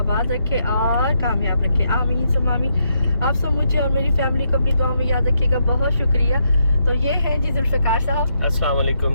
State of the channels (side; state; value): both; inverted; correlation -0.78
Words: रखे और कामयाब रखे, आमीन सुम्मा आमीन। आप सब मुझे और मेरी फैमिली को अपनी दुआ में याद रखिएगा। बहुत शुक्रिया। तो ये हैं जी जुल्फ़िकार साहब। अस्सलाम